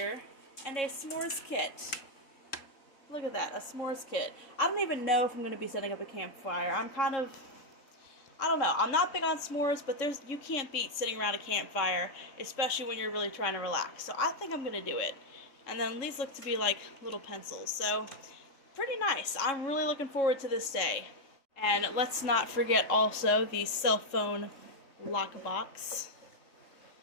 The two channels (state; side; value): late; right; 3.6 ms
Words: and a s'mores kit. Look at that, a s'mores kit. I don't even know if I'm going to be setting up a campfire. I don't know. I'm not big on s'mores, but you can't beat sitting around a campfire, especially when you're really trying to relax. So I think I'm going to do it. And then these look to be like little pencils. So pretty nice. I'm really looking forward to this day. And let's not forget also the cell phone lock box.